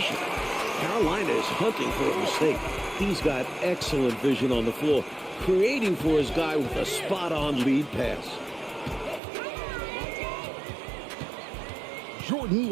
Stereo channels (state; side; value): drops out; left; at 9.2 s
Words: Carolina is hunting for a mistake. He's got excellent vision on the floor, creating for his guy with a spot-on lead pass. Jordan